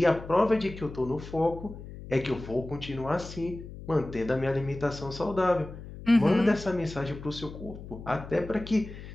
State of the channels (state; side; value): noise; left; hum, 13 dB below the sound